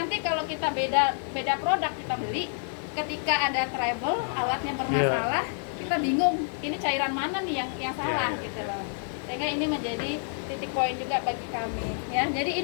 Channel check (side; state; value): right; silent; 59 dB below the other